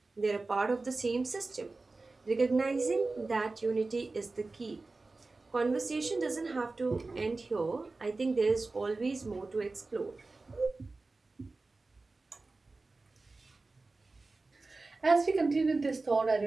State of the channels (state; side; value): quieter; left; 3.5 dB